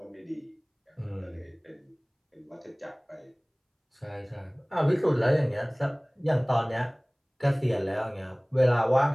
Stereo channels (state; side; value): identical; both; correlation 1.00